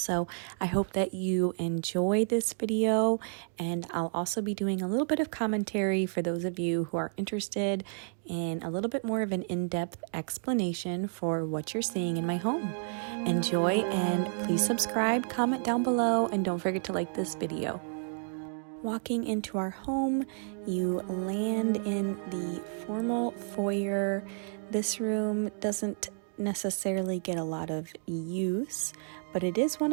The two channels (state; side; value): silent; left; 57 dB below the other